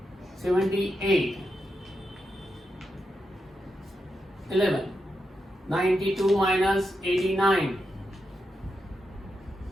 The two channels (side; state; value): both; normal; correlation 0.86